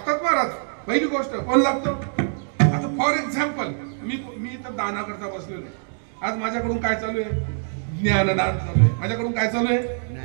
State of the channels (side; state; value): left; silent; digital silence